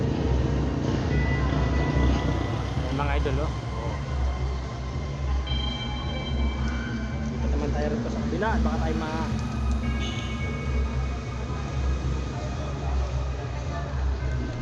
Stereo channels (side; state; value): both; identical; correlation 1.00